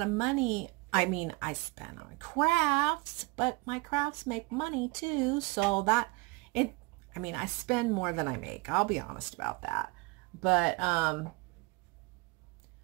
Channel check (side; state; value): left; quieter; 24.7 dB